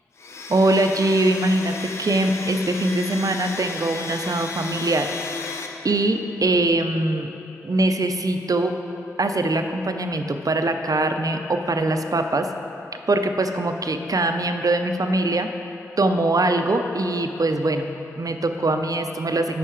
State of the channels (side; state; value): both; normal; correlation 0.67